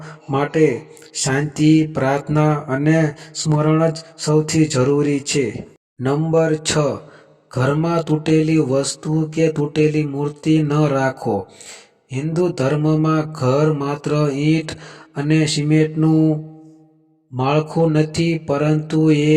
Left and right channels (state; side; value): identical; both; correlation 1.00